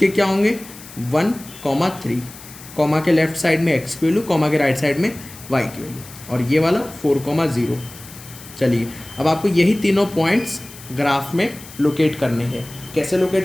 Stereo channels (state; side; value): noise; left; hiss, 17 dB below the sound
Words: क्या होंगे, 1,3, कॉमा के लेफ्ट साइड में x की वैल्यू, कॉमा के राइट साइड में y की वैल्यू, और ये वाला 4,0। चलिए, अब आपको यही तीनों पॉइंट्स ग्राफ में लोकेट करने हैं। कैसे